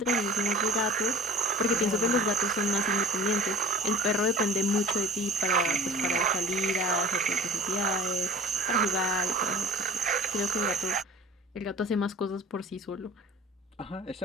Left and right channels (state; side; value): normal; both; correlation 0.41